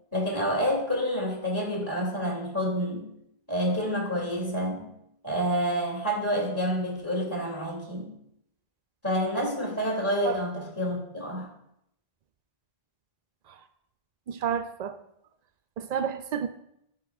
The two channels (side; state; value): left; late; 1.9 ms